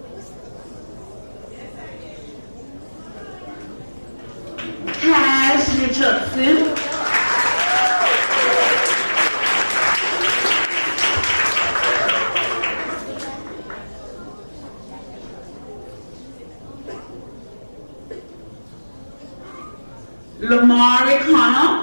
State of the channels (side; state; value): both; inverted; correlation -1.00